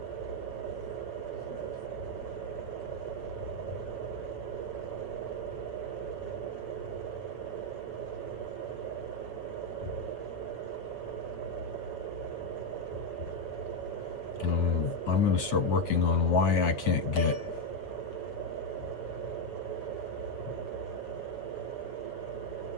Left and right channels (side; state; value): right; late; 8.0 ms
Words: I'm going to start working on why I can't get